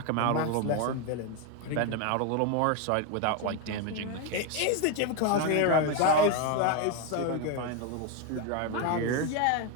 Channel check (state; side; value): different; both; correlation 0.02